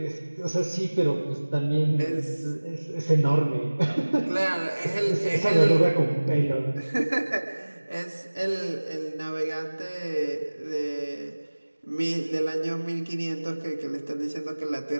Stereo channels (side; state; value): both; inverted; correlation -1.00